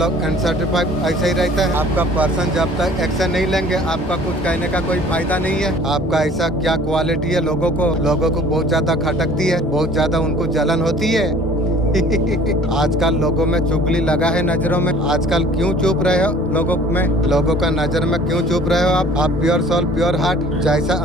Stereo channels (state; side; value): normal; both; correlation 0.51